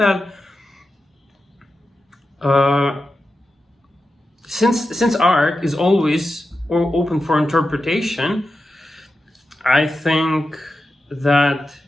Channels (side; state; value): both; normal; correlation 0.91